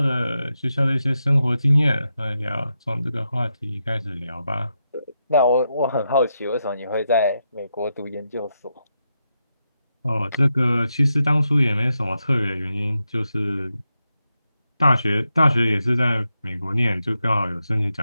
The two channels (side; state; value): both; inverted; correlation -0.86